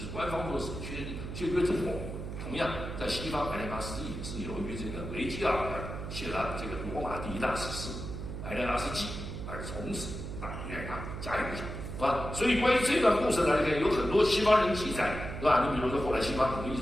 官方做史确凿之后。同样，在西方艾莲阿斯纪是由于这个维吉尔写了这个罗马第一大史诗《艾莲阿斯纪》，而从此大名远扬，家喻户晓，是吧？所以关于这段故事呢，有很多西方人记载，是吧？你比如说后来西方很多艺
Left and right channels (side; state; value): right; noise; hum, 7 dB below the sound